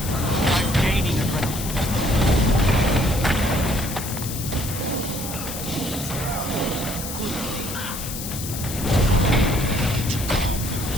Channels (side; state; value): left; noise; hiss, 8 dB below the sound